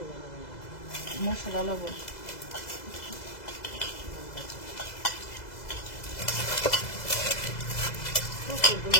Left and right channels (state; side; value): late; right; 2.0 ms